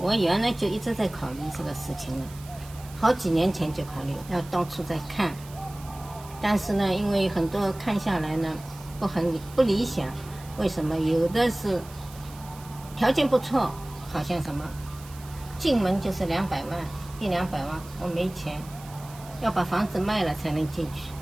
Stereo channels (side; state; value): right; noise; hiss, 20 dB below the sound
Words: 我原来就一直在考虑这个事情了，好几年前就考虑要到处在看，但是呢，因为很多看下来呢不理想，为什么？有的是条件不错，好像什么进门就是200万，100-200万，我没钱，要把房子卖了才能进去。